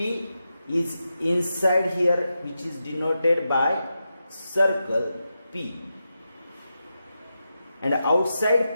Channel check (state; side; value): inverted; both; correlation -0.88